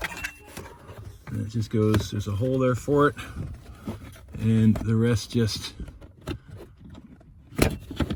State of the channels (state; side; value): identical; both; correlation 1.00